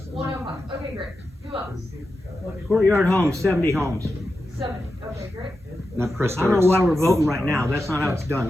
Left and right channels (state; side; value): normal; both; correlation 0.90